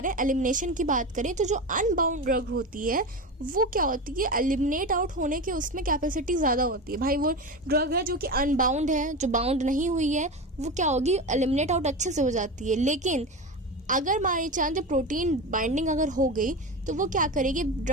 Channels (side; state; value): both; normal; correlation 0.23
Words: हैं एलिमिनेशन की बात करें तो जो अनबाउंड ड्रग होती है वो क्या होती है, एलिमिनेट आउट होने के उसमें कैपेसिटी ज्यादा होती है। भाई वो ड्रग है जो कि अनबाउंड है, जो बाउंड नहीं हुई है, वो क्या होगी, एलिमिनेट आउट अच्छे से हो जाती है। लेकिन अगर मानी चांस प्रोटीन बाइंडिंग अगर हो गई तो वो क्या करेगी,